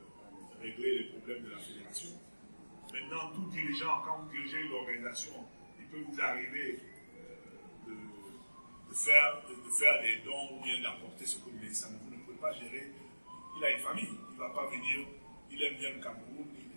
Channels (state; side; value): inverted; both; correlation -1.00